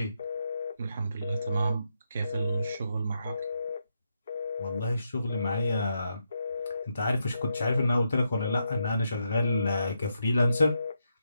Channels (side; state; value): both; inverted; correlation -0.82